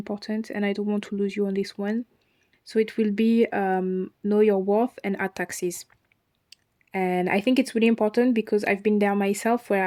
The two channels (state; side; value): identical; both; correlation 1.00